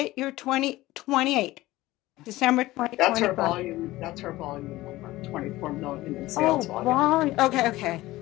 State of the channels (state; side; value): quieter; right; 17.7 dB